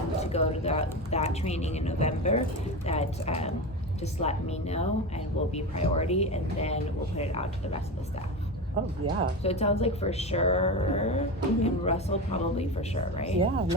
to go to that training in November, that just let me know and we'll be priority, and then we'll put it out to the rest of the staff. Oh, yeah. So it sounds like for sure, and Russell probably for sure, right? Yeah,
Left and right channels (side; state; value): both; normal; correlation 0.23